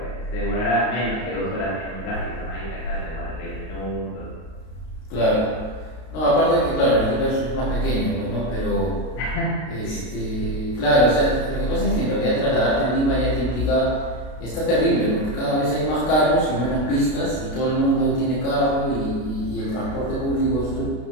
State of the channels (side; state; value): right; late; 32 ms